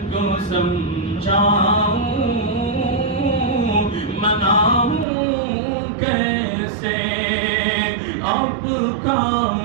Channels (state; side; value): drops out; left; at 5.1 s